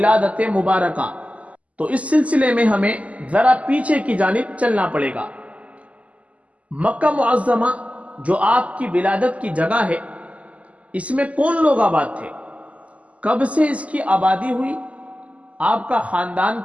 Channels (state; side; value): late; left; 0.068 ms